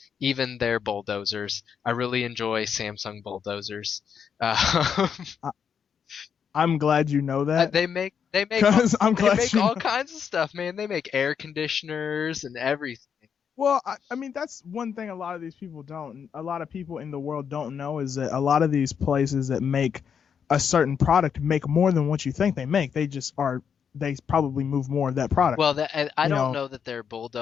even their bulldozers. I really enjoy Samsung bulldozers. Uh, I, I'm glad you know that, they make because I'm they glad make you all know. kinds of stuff, man. They make air conditioners and everything. Well, I mean, that's one thing a lot of these people don't. A lot of people in the world don't know is that a lot of these places that make a certain product make more than what you think they make. They just are. They probably move more of that product. Well, I You don't know know that their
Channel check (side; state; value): right; quieter; 7.2 dB